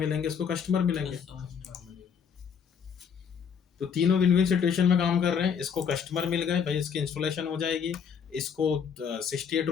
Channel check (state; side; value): quieter; right; 7.1 dB